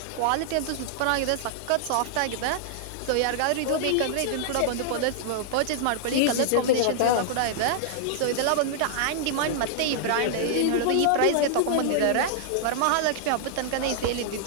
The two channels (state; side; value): different; both; correlation -0.01